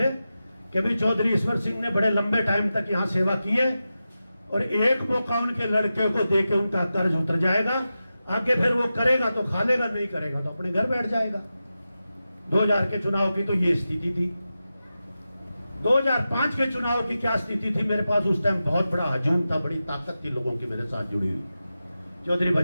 कि भाई चौधरी ईश्वर सिंह ने बड़े लंबे टाइम तक यहां सेवा की है और एक मौका उनके लड़के को देके उनका कर्ज उतर जाएगा, आगे फिर वो करेगा तो खा लेगा, नहीं करेगा तो अपने घर बैठ जाएगा। 2000 के चुनाव की तो ये स्थिति थी। 2005 के चुनाव की क्या स्थिति थी, मेरे पास उस टाइम बहुत बड़ा हजूम था, बड़ी ताकत थी लोगों की मेरे साथ जुड़ी हुई। चौधरी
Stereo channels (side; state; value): both; inverted; correlation -0.92